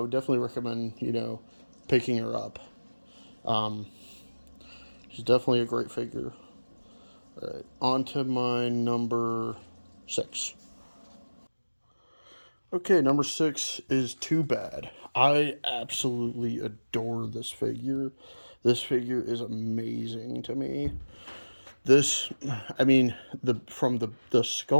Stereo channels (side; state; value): both; inverted; correlation -1.00